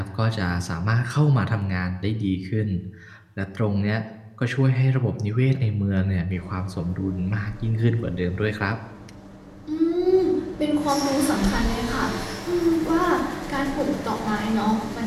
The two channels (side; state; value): both; identical; correlation 1.00